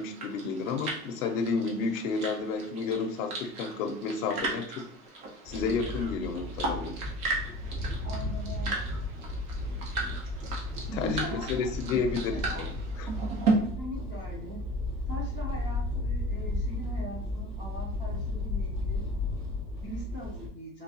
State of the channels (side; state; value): both; normal; correlation 0.40